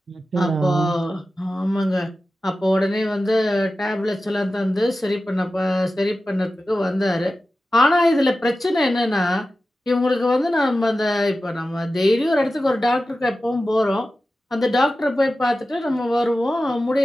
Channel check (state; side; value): normal; both; correlation 0.94